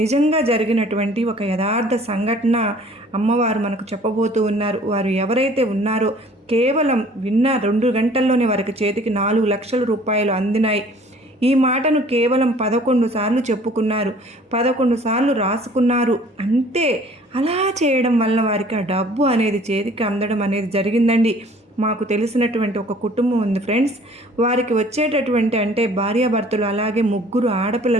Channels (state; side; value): normal; both; correlation 0.53